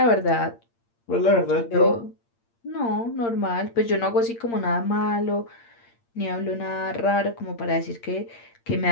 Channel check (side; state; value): right; late; 8.7 ms